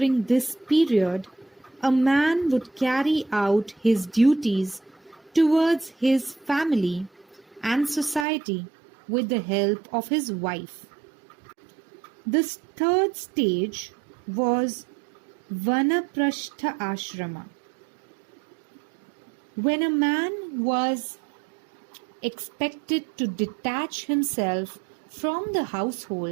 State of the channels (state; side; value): drops out; left; at 8.2 s